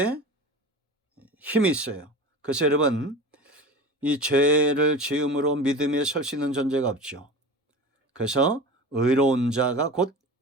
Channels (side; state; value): both; normal; correlation 0.33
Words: 힘이 있어요. 그래서 여러분, 이 죄를 지음으로 믿음에 설 수 있는 존재가 없죠. 그래서 의로운 자가 곧